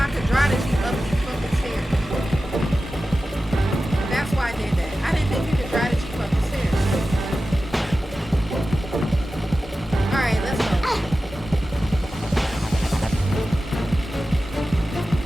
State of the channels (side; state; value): both; normal; correlation 0.94